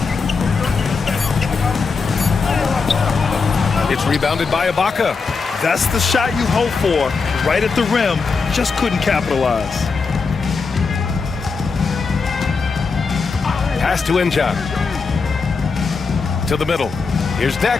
It's rebounded by Ibaka. That's the shot you hope for, right at the rim. Just couldn't capitalize. Pass to Inja. To the middle. Here's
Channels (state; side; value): quieter; right; 4.8 dB